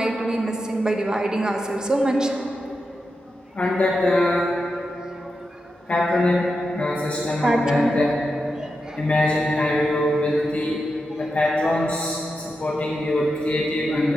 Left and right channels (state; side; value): normal; both; correlation 0.88